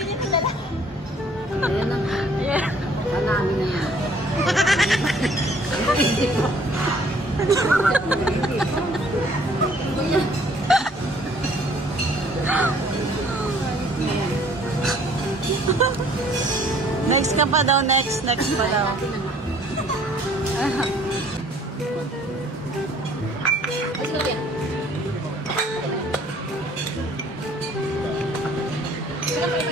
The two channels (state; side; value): normal; both; correlation 0.58